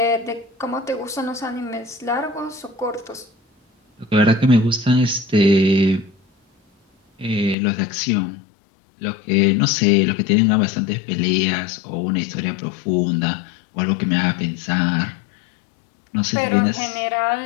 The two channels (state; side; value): drops out; right; at 7.6 s